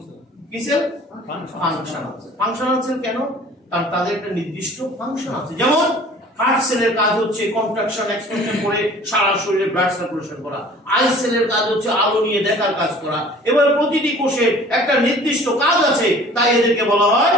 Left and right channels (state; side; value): normal; both; correlation 0.48